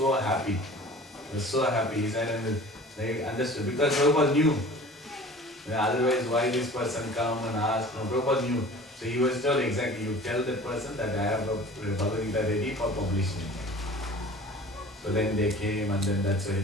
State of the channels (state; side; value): normal; both; correlation 0.43